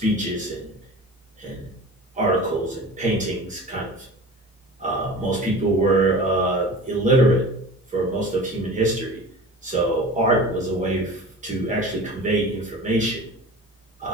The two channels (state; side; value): normal; both; correlation 0.36